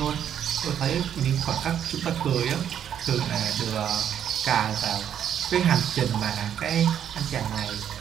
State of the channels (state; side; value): quieter; left; 9.4 dB